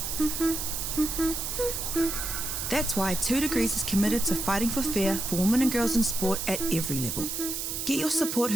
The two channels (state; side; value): noise; right; hiss, 3 dB below the sound